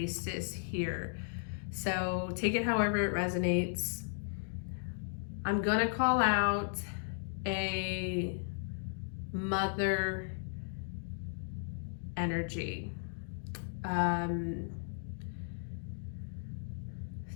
here. So take it however it resonates. I'm gonna call out a mother energy.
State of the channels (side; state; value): right; silent; digital silence